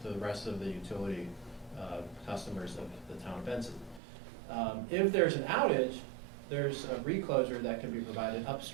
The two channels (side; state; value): left; drops out; at 4.0 s